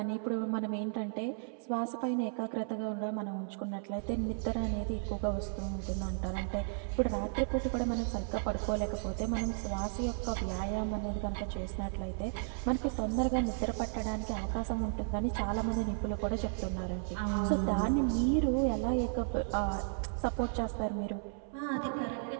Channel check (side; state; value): left; silent; 55 dB below the other